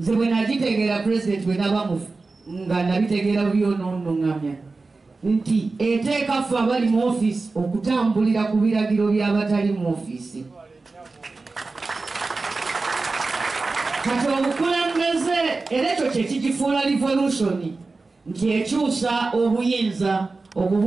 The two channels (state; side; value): quieter; left; 3.7 dB